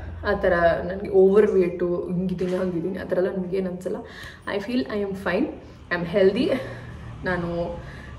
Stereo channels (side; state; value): both; identical; correlation 1.00